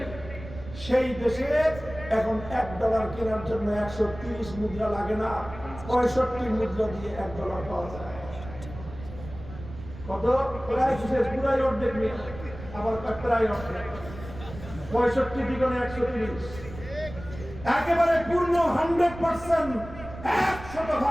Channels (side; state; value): right; noise; rumble, 13 dB below the sound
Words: সেই দেশে এখন $1 কেনার জন্য 130 মুদ্রা লাগে না, 65 মুদ্রা দিয়ে $1 পাওয়া যায়। কত? প্রায় পুরাই অর্ধেক নিয়ে, আবার প্রায় অর্ধেক। 65 দ্বিগুণে 130, একেবারে পূর্ণ 100%,